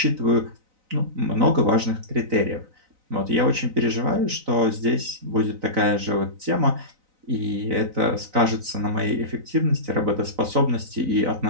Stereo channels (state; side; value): late; left; 3.9 ms